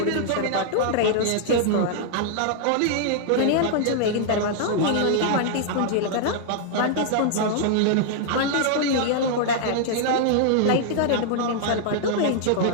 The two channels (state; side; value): different; both; correlation -0.01